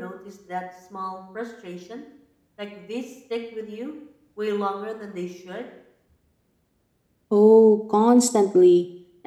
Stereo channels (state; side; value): identical; both; correlation 1.00